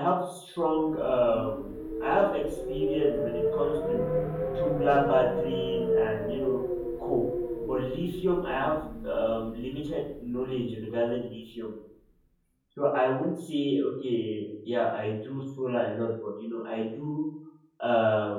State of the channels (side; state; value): both; identical; correlation 1.00